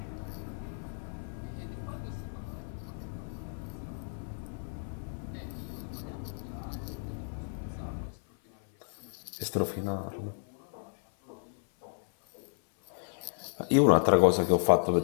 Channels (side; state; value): right; silent; 56 dB below the other